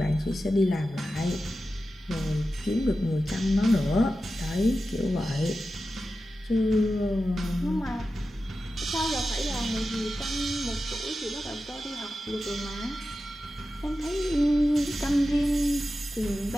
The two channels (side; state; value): both; normal; correlation 0.92